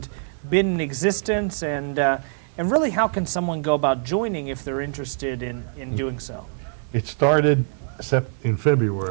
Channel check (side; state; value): left; silent; digital silence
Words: been in existence, and really how can someone go about joining if they're interested in doing so? It started in